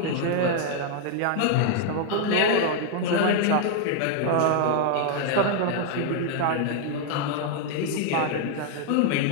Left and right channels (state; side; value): different; both; correlation 0.00